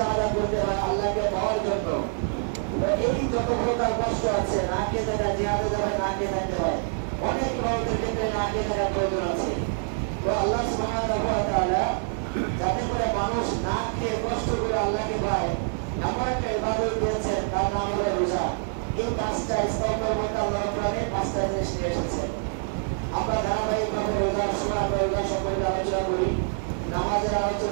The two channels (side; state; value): left; silent; 61 dB below the other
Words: করতে হয় আল্লাহকে পাওয়ার জন্য। এই যত প্রকার কষ্ট আছে, না খেয়ে থাকা, জিহাদে যাবে না খেয়ে থাকতে হয়, অনেক ইবাদতের ক্ষেত্রে না খেয়ে থাকার প্রয়োজন আছে। তো আল্লাহ সুবহানাহু ওয়া তাআলা যাতে করে মানুষ না খেয়ে কষ্ট করে আল্লাহকে পায় এমন একটা ইবাদত দিয়েছেন, তার নাম হলো রোজা। এই পাঁচটা স্তম্ভের মধ্যে আল্লাহ রাব্বুল আলামিন পাঁচটা জিনিস নিয়ে এসেছেন। আমরা ধারাবাহিকভাবে রোজার সময় আমরা রোজা সম্পর্কে আলোচনা করি, নামাজের